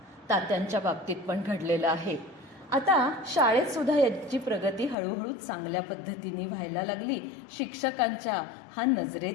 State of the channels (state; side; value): drops out; right; at 5.0 s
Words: तात्यांच्या बाबतीत पण घडलेलं आहे. आता शाळेत सुद्धा याची प्रगती हळूहळू चांगल्या पद्धतीने व्हायला लागली. शिक्षकांच्या हा